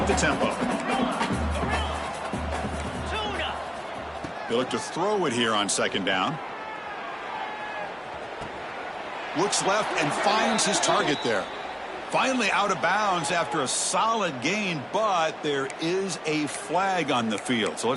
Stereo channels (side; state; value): both; identical; correlation 1.00